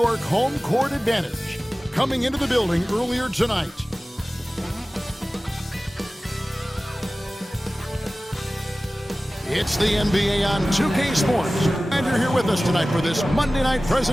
home court advantage. Coming into the building earlier tonight. It's the NBA on 2K Sports, and you're here with us tonight for this Monday night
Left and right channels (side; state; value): both; normal; correlation 0.97